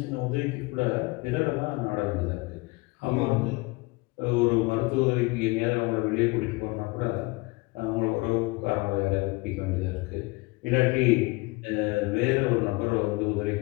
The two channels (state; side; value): quieter; right; 24.5 dB